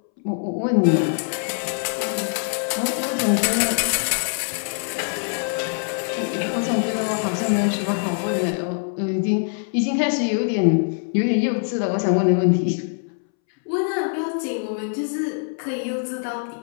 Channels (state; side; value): silent; right; 63 dB below the other